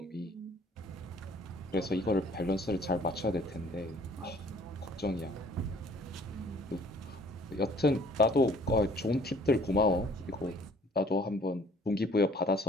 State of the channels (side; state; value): both; normal; correlation 0.56